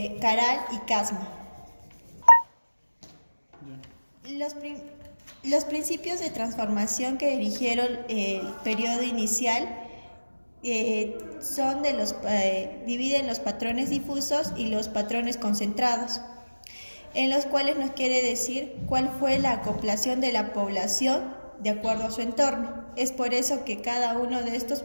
Caral y Casma. Los principios de transformación que dirigieron el periodo inicial dividen los patrones difusos y los patrones concentrados, en los cuales nos quiere decir cuál fue la acoplación de la población de acuerdo a su entorno. Es por eso que cada uno de estos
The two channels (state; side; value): inverted; both; correlation -1.00